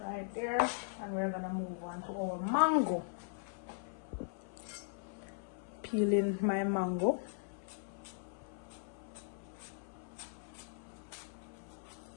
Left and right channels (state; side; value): silent; right; 52 dB below the other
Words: right there, and we're gonna move on to our mango. Peeling my mango.